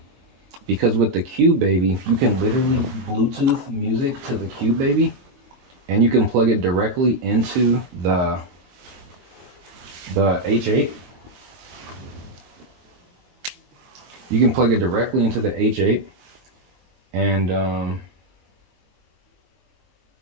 Because with the Cube Baby, you can literally Bluetooth music to the Cube Baby, and you can plug it directly into the H8. You can plug it directly into the H8, and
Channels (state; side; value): late; left; 22 ms